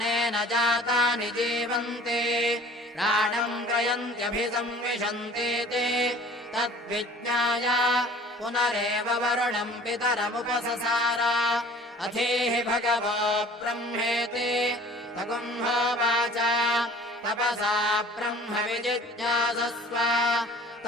जातानि जीवन्ति प्राणम् ग्रयन्त्यभिसंविशन्तीति तद्विज्ञाय पुनरेव वरुणम् पितरमुपससार अधीः भगवो ब्रह्मेति तगुंहोवाच तपसा ब्रह्म विजिज्ञासस्व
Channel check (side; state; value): both; normal; correlation 0.48